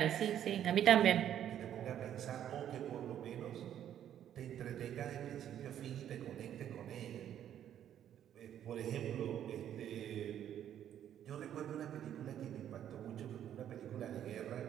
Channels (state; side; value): quieter; left; 10.4 dB